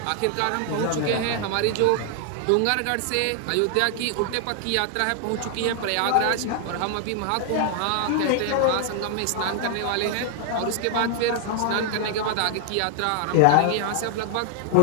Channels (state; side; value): different; both; correlation 0.00